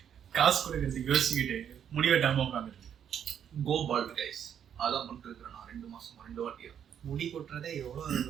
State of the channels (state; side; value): quieter; left; 8.8 dB